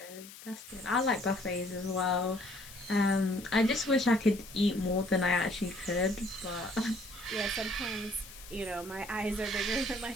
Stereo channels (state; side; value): noise; left; hiss, 17 dB below the sound